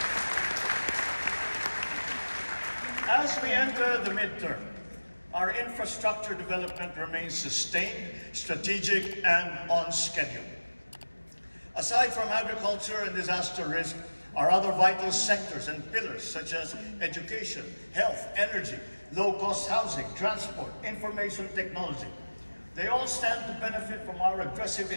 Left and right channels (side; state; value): both; inverted; correlation -1.00